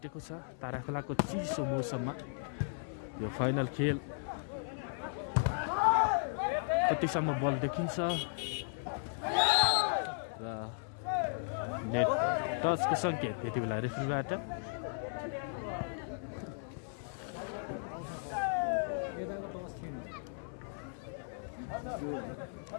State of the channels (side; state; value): right; silent; 54 dB below the other